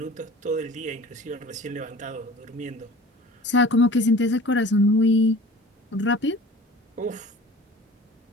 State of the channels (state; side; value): normal; both; correlation 0.42